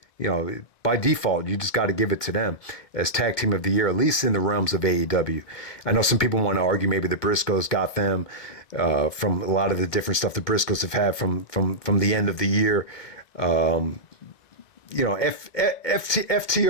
by default, you just got to give it to them as tag team of the year, at least in the realms of AEW. I know some people want to argue maybe the Briscoes got them from a lot of the different stuff the Briscoes have had from the end of the year.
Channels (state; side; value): late; right; 1.8 ms